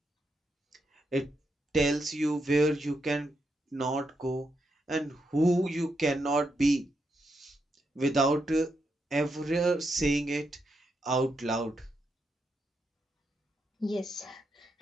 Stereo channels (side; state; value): both; normal; correlation 0.82